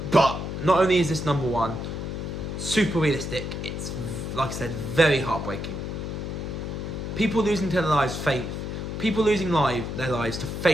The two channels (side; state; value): left; noise; hum, 5 dB below the sound